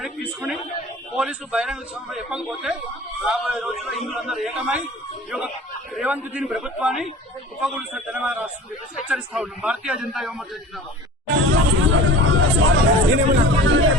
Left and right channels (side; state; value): both; normal; correlation 0.40